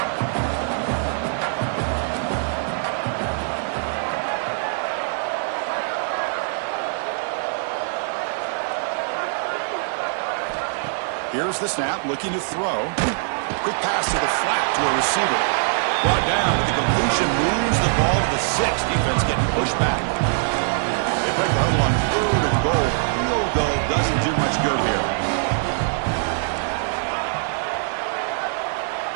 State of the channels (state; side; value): silent; left; digital silence